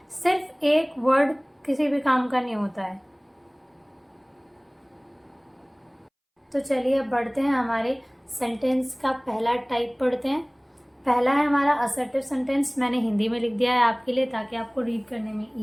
सिर्फ एक वर्ड किसी भी काम का नहीं होता है। तो चलिए अब बढ़ते हैं, हमारे सेंटेंस का पहला टाइप पढ़ते हैं। पहला है हमारा असर्टिव सेंटेंस। मैंने हिंदी में लिख दिया है आपके लिए ताकि आपको रीड करने में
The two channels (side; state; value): both; identical; correlation 1.00